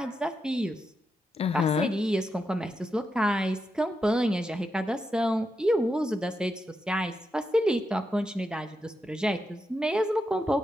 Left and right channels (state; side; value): normal; both; correlation 0.86